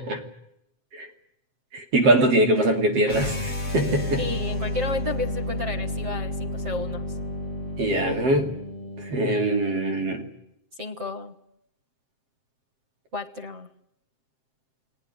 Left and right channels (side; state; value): left; late; 7.6 ms